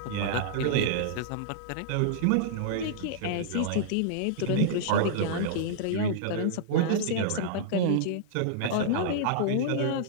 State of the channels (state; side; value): different; both; correlation -0.02